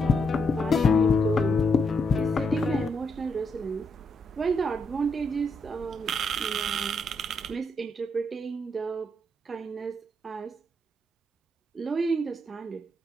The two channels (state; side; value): normal; both; correlation 0.78